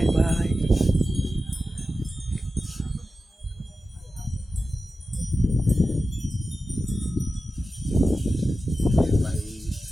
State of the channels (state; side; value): normal; both; correlation 0.93